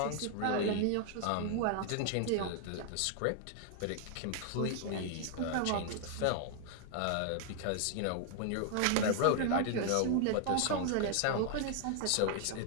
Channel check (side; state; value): both; different; correlation 0.00